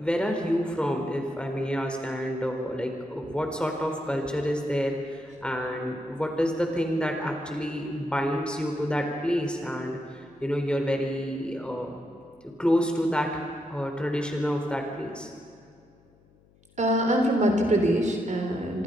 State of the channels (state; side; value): noise; left; hum, 30 dB below the sound